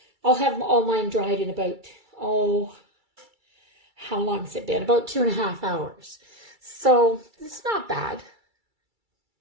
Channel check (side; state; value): left; late; 2.3 ms